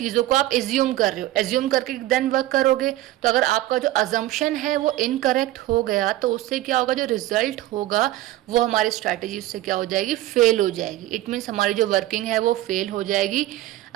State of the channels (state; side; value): quieter; left; 15.6 dB